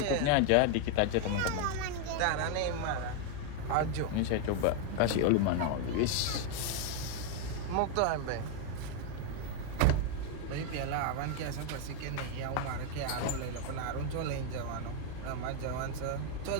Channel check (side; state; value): both; different; correlation 0.01